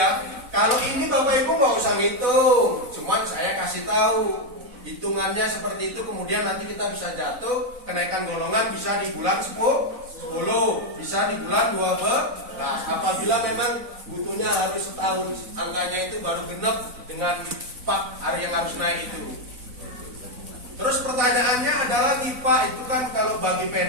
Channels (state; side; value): late; left; 4.0 ms